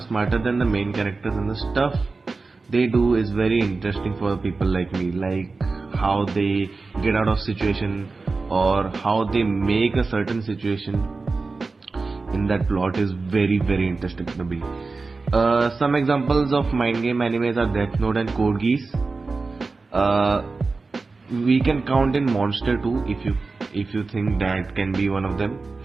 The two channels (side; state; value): left; quieter; 3.9 dB